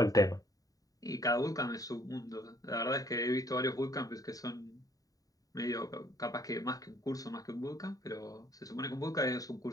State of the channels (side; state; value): right; late; 0.18 ms